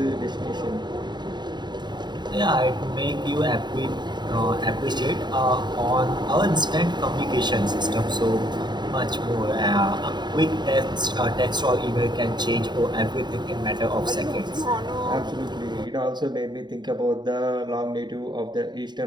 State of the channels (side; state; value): left; late; 0.21 ms